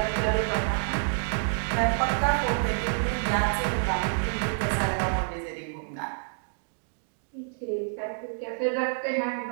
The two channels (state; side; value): silent; left; digital silence